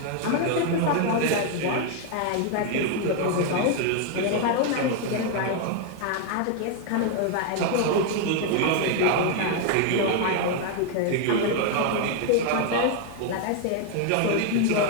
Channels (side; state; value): both; different; correlation 0.01